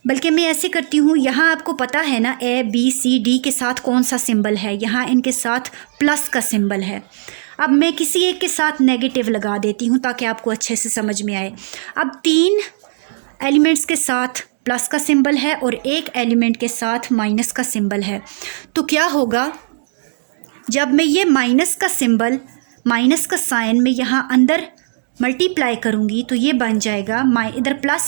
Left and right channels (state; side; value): silent; left; digital silence